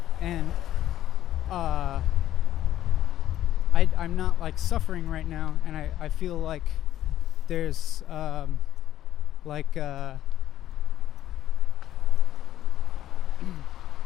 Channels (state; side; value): quieter; right; 12.5 dB